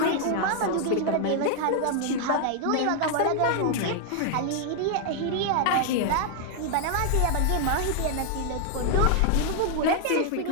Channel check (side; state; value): both; different; correlation 0.00